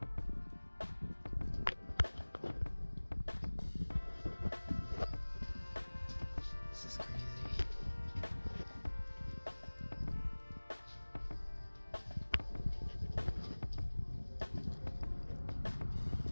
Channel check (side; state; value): both; inverted; correlation -1.00